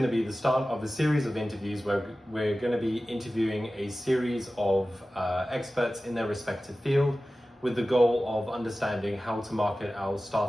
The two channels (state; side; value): normal; both; correlation 0.96